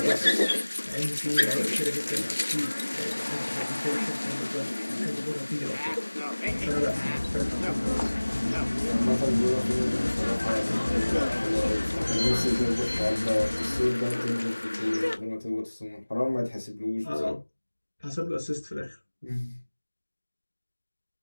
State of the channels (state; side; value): inverted; both; correlation -1.00